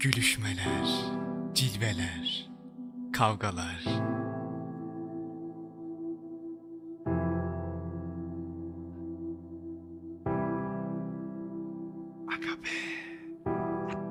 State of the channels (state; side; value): identical; both; correlation 1.00